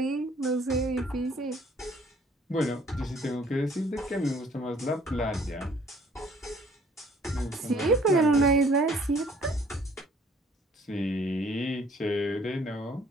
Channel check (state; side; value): normal; both; correlation 0.58